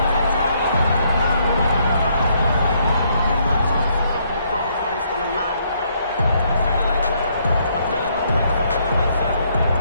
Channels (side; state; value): both; inverted; correlation -0.70